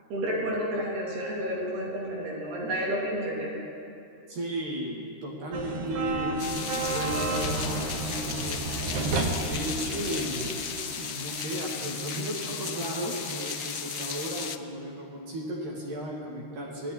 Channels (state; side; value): late; left; 13 ms